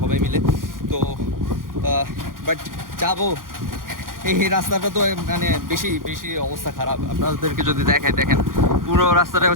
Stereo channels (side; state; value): left; late; 0.90 ms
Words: সবাই মিলে। তো বাট যাবো, এই রাস্তাটা তো মানে বেশি বেশি অবস্থা খারাপ। আপনাদেরকে যদি দেখেন পুরো রাস্তাটা